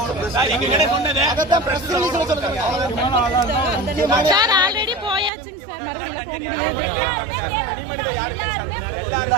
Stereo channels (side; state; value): left; drops out; at 5.3 s